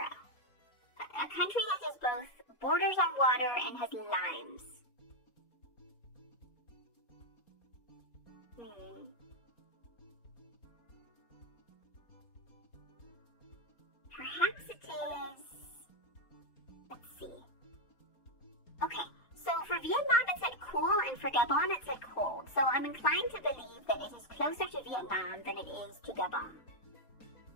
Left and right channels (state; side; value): late; right; 4.3 ms